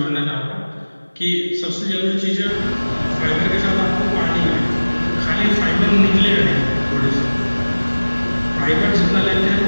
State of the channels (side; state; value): both; inverted; correlation -1.00